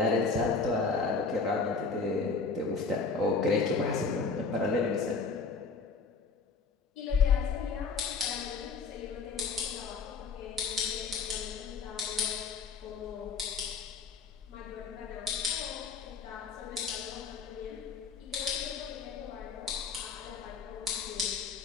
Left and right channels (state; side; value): quieter; right; 4.7 dB